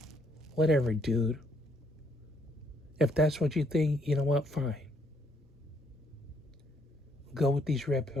Whatever, dude. If that's what you think, you know what? Fine. Go with these red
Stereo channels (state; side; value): normal; both; correlation 0.70